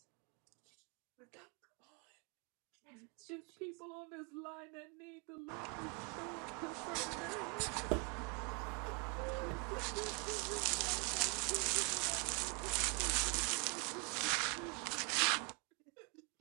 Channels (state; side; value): quieter; left; 34.5 dB